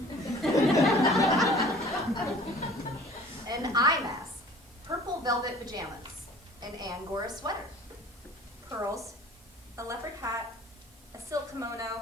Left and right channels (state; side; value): normal; both; correlation 0.48